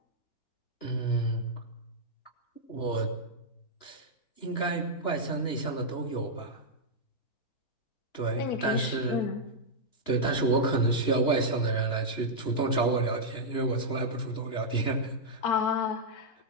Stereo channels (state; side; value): late; right; 2.9 ms